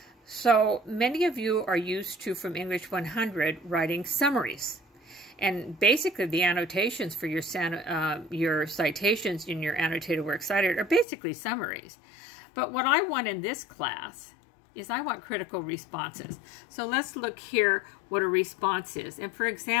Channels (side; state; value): right; drops out; at 11.1 s